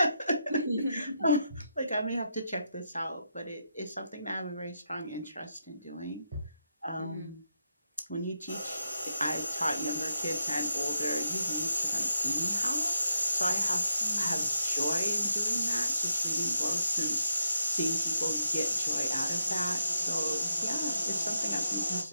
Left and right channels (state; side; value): inverted; both; correlation -0.81